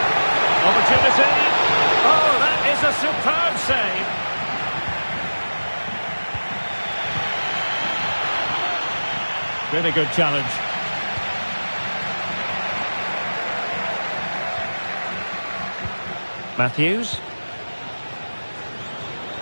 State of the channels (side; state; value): both; inverted; correlation -1.00